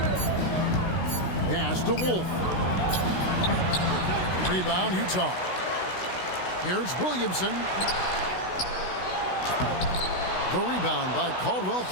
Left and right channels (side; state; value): right; late; 16 ms